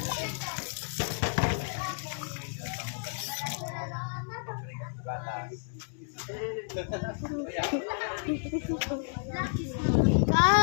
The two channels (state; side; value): silent; right; digital silence